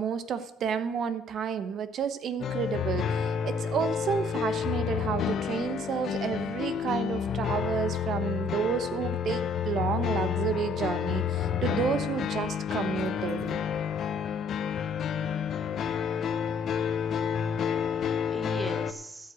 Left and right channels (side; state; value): both; normal; correlation 0.61